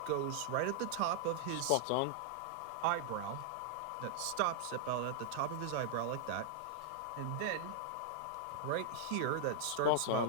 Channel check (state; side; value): different; both; correlation 0.00